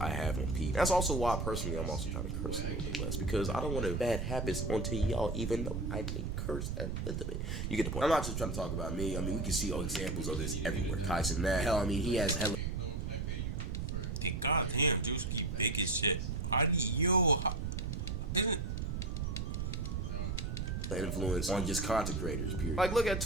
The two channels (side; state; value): right; noise; rumble, 2 dB below the sound